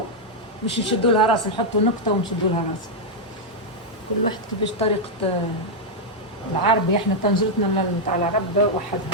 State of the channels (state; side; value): normal; both; correlation -0.03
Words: مش نشدوا لها راس نحطوا نقطه ونشدوا لها راس. كل واحد كيفاش طريقه العربي. احنا طنجرتنا نتاع العرب